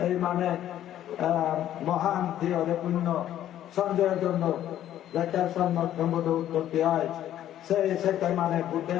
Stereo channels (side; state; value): right; quieter; 11.8 dB